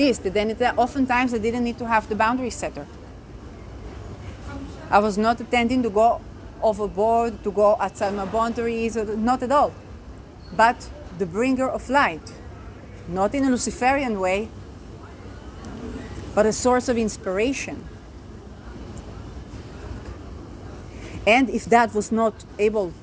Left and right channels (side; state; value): both; identical; correlation 1.00